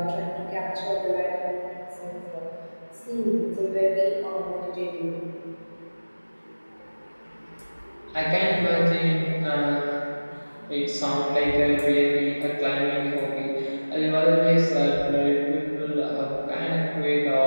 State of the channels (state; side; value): inverted; both; correlation -1.00